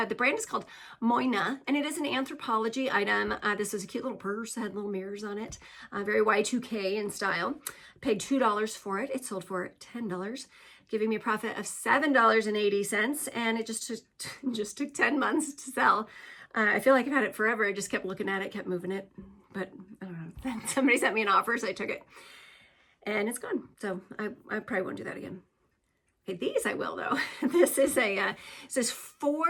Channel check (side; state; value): both; identical; correlation 1.00